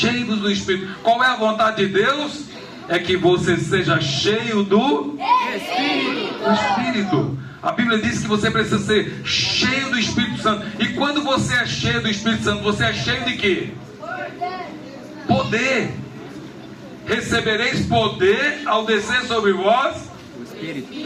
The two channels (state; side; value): identical; both; correlation 1.00